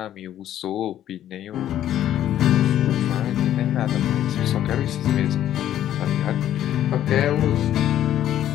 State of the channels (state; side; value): quieter; right; 11.6 dB